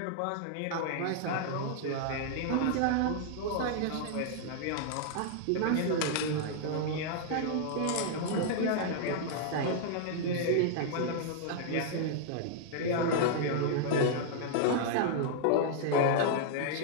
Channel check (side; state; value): both; different; correlation -0.01